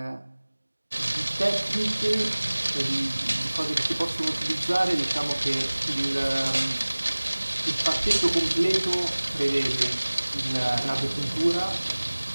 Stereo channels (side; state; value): both; inverted; correlation -1.00